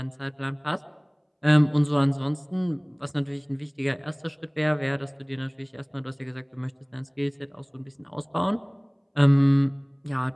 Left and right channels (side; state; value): both; identical; correlation 1.00